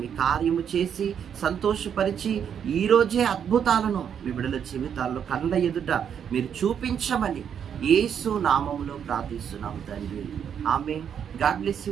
మీ కార్యము చేసి సంతోషపరిచి ఈరోజే అద్భుతాలను మీ బిడ్డల జీవితాల్లో కళ్ళ ఎదుట మీరు చూపించమని యేసు నామములో ప్రార్థిస్తున్నాము తండ్రి. ఆమేన్. God bless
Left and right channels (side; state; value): left; quieter; 8.2 dB